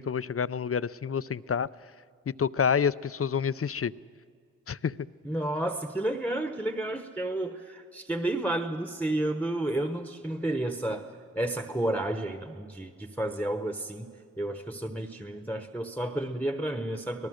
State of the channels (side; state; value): both; normal; correlation 0.47